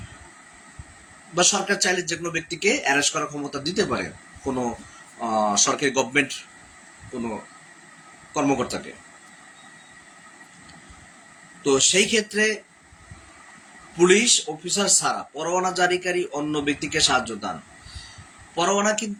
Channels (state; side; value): identical; both; correlation 1.00